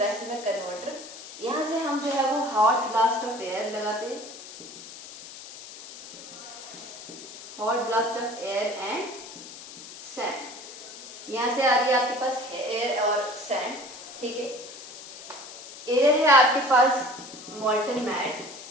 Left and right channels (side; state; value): left; noise; hiss, 14 dB below the sound